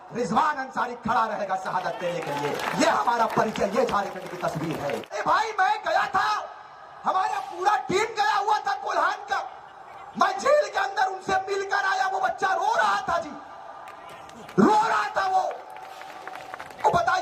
रिजवान अंसारी खड़ा रहेगा शहादत देने के लिए। ये हमारा परिचय, ये झारखंड की तस्वीर है। ए भाई, मैं गया था, हमारा पूरा टीम गया हुआ था कोल्हान का। मैं जेल के अंदर उनसे मिलकर आया। वो बच्चा रो रहा था जी, रो रहा था वो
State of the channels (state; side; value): identical; both; correlation 1.00